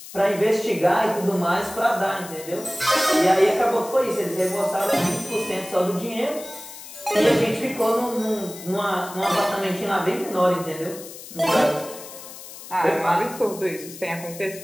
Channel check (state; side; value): noise; left; hiss, 14 dB below the sound